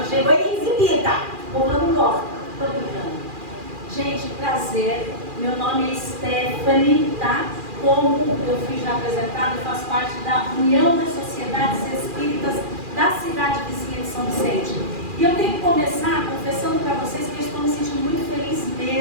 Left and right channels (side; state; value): left; late; 2.4 ms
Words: chegou exibida. O povo não gosta. Estou brincando. Gente, prazer. Meu nome é Stephanie, tá? Como eu fui já apresentada, eu faço parte da União das Sociedades Espíritas da cidade vizinha de São Vicente. E eu tenho que começar confessando para vocês que eu estou me sentindo muito feliz